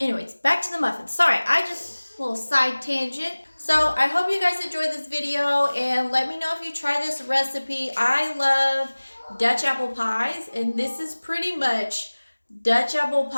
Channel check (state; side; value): inverted; both; correlation -1.00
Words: back to the muffins. Sorry, I just, little side tangent. So I hope you guys enjoyed this video, and let me know if you try this recipe. I love Dutch apple pies, and this is pretty much Dutch apple